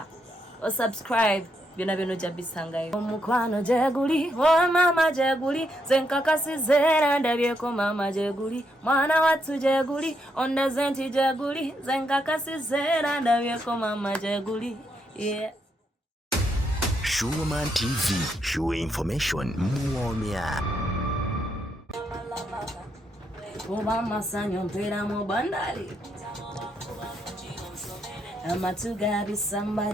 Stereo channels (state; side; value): normal; both; correlation 0.78